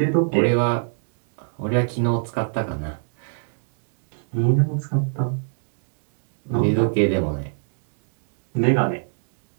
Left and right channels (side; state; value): left; silent; digital silence